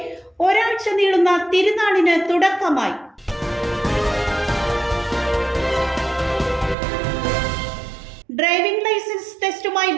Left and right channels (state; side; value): drops out; left; at 6.8 s